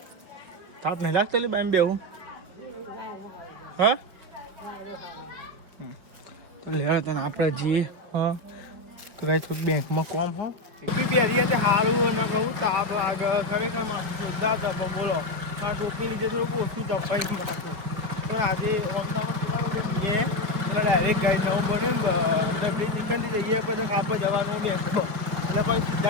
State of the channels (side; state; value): left; late; 5.4 ms